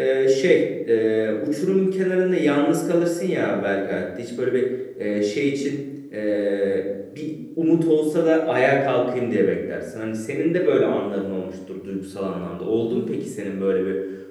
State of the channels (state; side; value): identical; both; correlation 1.00